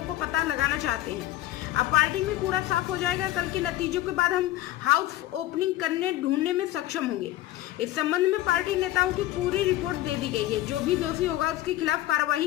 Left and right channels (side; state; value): right; quieter; 15.1 dB